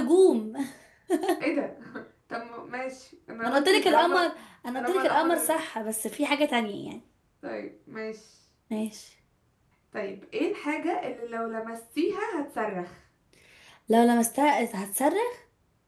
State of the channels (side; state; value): both; identical; correlation 1.00